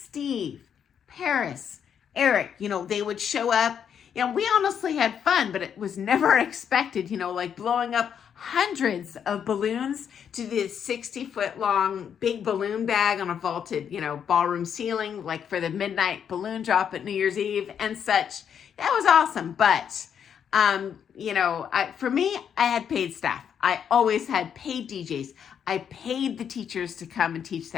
Paris, Eric, they would show up. We honestly had fun, but it was never expected, like blowing up hundreds of balloons to this 60-foot long big balloon bag on a vaulted, ballroom ceiling, like for the midnight balloon drop at New Year's Eve and such. That was awesome. But, for me, I had paid staff. I always had paid DJs. I paid the teachers to come and teach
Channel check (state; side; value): quieter; right; 8.1 dB